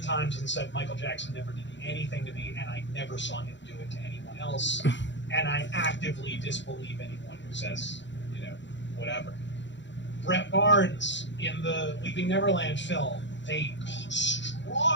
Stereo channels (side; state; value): right; late; 0.53 ms